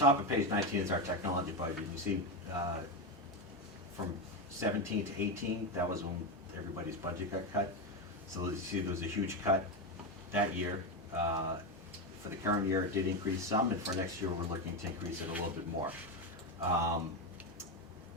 of page 19 is our technology budget. You see, from 17 to 18, that was when everybody's budget got cut. So you see there was a huge cut that year. For the current year, it did increase some, and for next year, we're looking to increase it a little bit more.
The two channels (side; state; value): both; normal; correlation 0.13